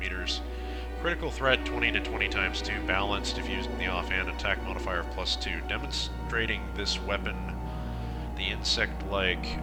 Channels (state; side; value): identical; both; correlation 1.00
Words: Critical threat 20 to 20 times 2. Balanced if used in the offhand. Attack modifier of +2. Demonstrating this weapon, the insect-like